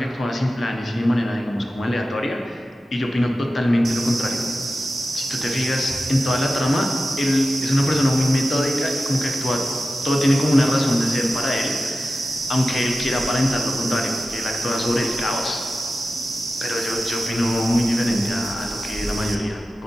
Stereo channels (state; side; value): normal; both; correlation 0.93